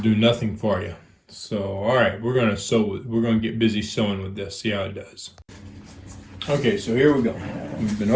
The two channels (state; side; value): identical; both; correlation 1.00